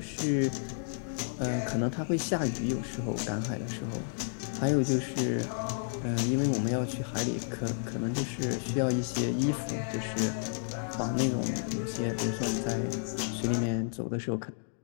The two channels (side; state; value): right; silent; digital silence